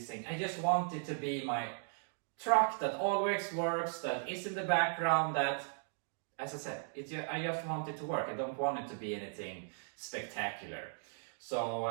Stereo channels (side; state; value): left; silent; digital silence